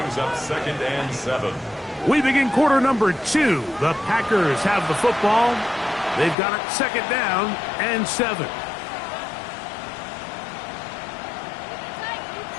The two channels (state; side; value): drops out; right; at 6.4 s